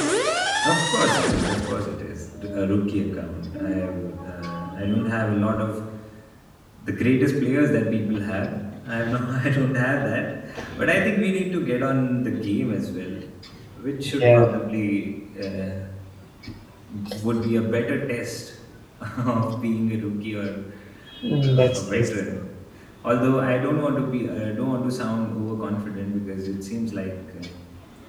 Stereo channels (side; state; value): both; identical; correlation 1.00